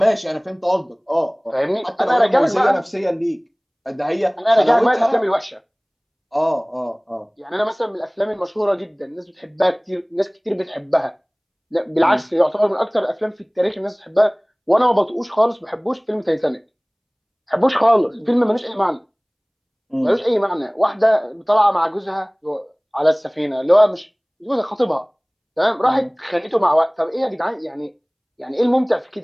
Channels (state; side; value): identical; both; correlation 1.00